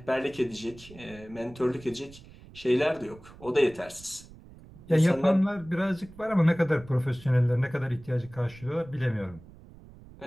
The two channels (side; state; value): right; noise; rumble, 20 dB below the sound